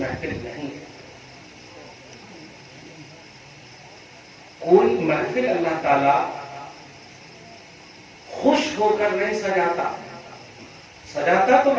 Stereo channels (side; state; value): both; identical; correlation 1.00